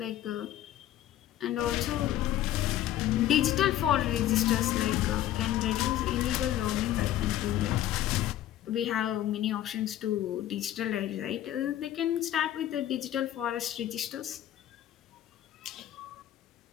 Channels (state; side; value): quieter; right; 12.7 dB